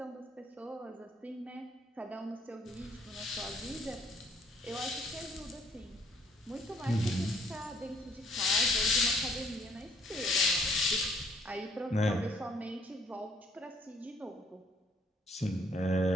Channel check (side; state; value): both; normal; correlation 0.64